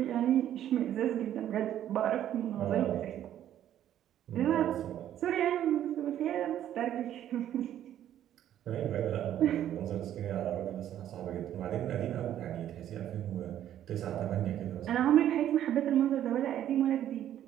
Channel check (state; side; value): quieter; left; 11.3 dB